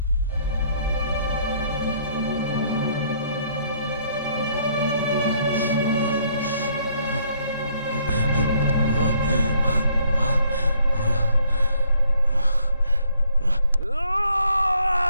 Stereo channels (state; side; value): inverted; both; correlation -0.66